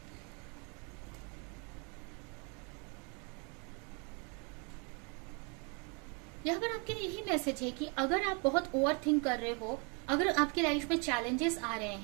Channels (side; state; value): left; quieter; 33.8 dB